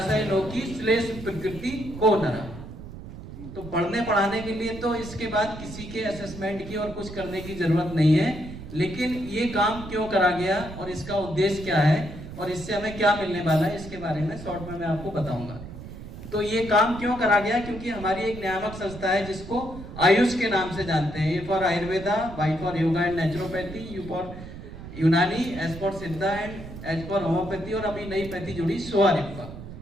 लोकी श्लेष प्रकृति को नरा। तो पढ़ने पढ़ाने के लिए तो इसके बाद किसी के असेसमेंट की और कुछ करने की जरूरत नहीं है, लेकिन ये काम क्यों करा गया और इसका उद्देश्य क्या है और इससे हमें क्या मिलने वाला है, इसके बारे में शॉर्ट में मैं आपको बताऊंगा। तो ये काम क्यों करा गया, क्योंकि हमारी एक नियामक संस्था है जिसको आयुष के नाम से जानते हैं। A for Ayurveda, Y for yoga and naturopathy, U for Unani, S for Siddha and H for homoeopathy, और अभी नई पैथी जुड़ी सोआरिप्पा।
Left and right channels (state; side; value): noise; right; rumble, 12 dB below the sound